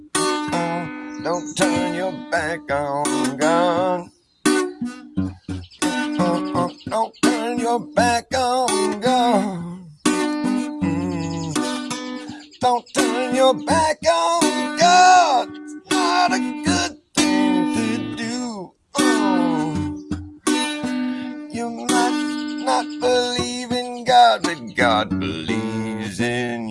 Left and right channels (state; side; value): identical; both; correlation 1.00